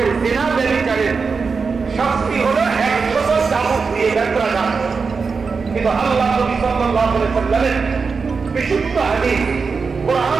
জিনা ব্যভিচারের শাস্তি হলো 100 চাবুক দিয়ে ব্যত্রাঘাত। কিন্তু আল্লাহ নবী সাল্লাল্লাহু আলাইহি ওয়াসাল্লামের বিশুদ্ধ হাদিস,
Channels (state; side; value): quieter; left; 5.0 dB